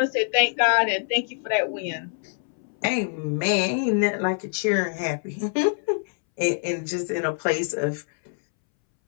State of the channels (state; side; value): silent; right; 62 dB below the other